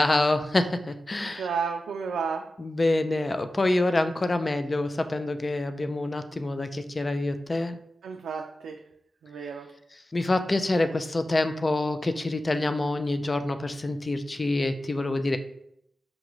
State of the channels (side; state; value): both; normal; correlation 0.94